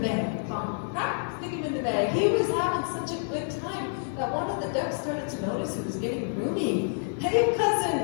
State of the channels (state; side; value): silent; right; 59 dB below the other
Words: bag. Bump, crack, stick him in the bag. He was having such a good time that one of the ducks started to notice he was getting roomy. Hey,